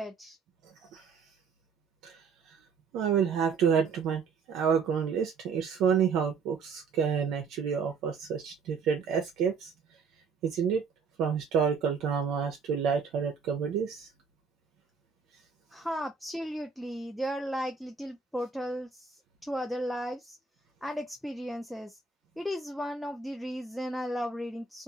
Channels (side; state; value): left; quieter; 5.4 dB